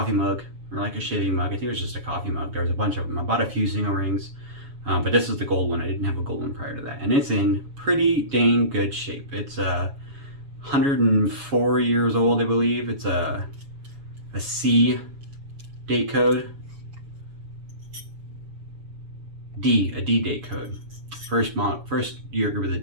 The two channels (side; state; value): left; late; 7.1 ms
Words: mug or like a shaving mug. I think it was just a coffee mug. There was a bunch of them. I bought a few single rings, but this is the gold one. I didn't have a gold one prior to that. And it's in pretty dang good shape. It's 104 years old, I believe. It's a C date code. A D date code. First year group of the